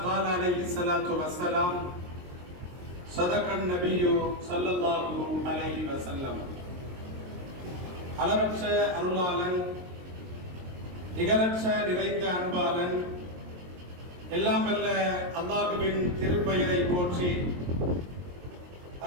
قال عليه الصلاة والسلام. صدق النبي صلى الله عليه وسلم. அளவற்ற அருளாளன், நிகரற்ற நிறைந்த அன்பாளன், எல்லாம் வல்ல அல்லாஹ்வின் திருப்பெயரை போற்றி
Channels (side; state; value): left; late; 22 ms